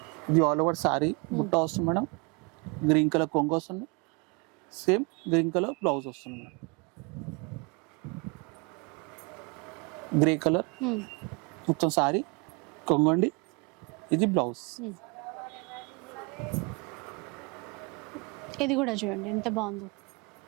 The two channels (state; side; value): quieter; left; 30.6 dB